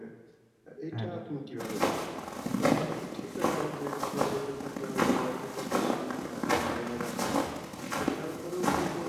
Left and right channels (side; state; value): both; identical; correlation 1.00